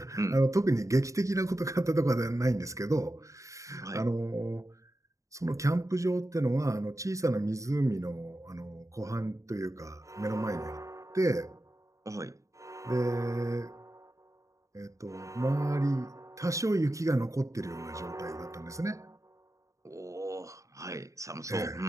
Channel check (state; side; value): late; left; 0.15 ms